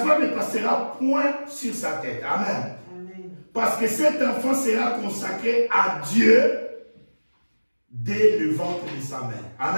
passera point sur sa tête. Amen. Amen. Parce que cet enfant sera consacré à Dieu dès le ventre de sa mère.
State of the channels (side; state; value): both; inverted; correlation -1.00